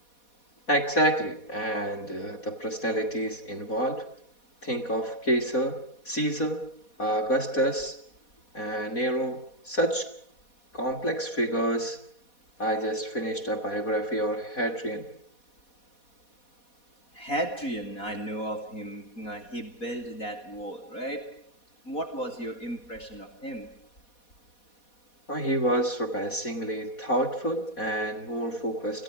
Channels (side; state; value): right; late; 4.2 ms